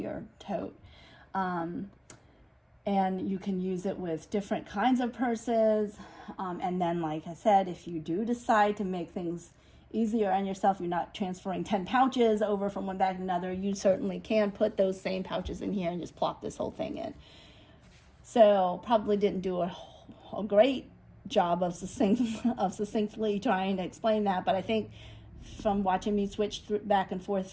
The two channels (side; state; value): both; identical; correlation 1.00